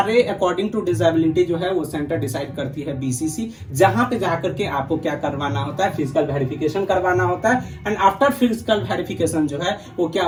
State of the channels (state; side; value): identical; both; correlation 1.00